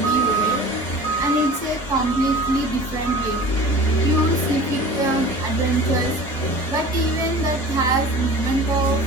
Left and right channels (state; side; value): normal; both; correlation 0.40